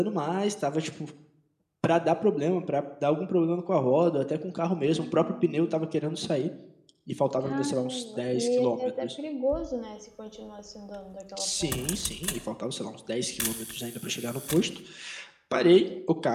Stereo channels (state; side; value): identical; both; correlation 1.00